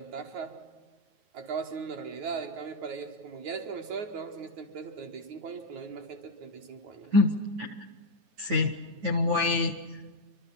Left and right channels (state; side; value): late; left; 9.4 ms